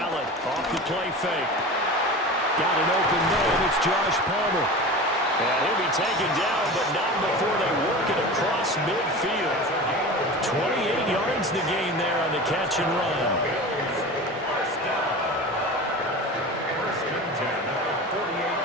off the play fake. Got an open man. It's Josh Palmer. And he'll be taken down, but not before they work it across midfield. 28 yards the gain there on the catch and run.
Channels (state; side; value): normal; both; correlation 0.32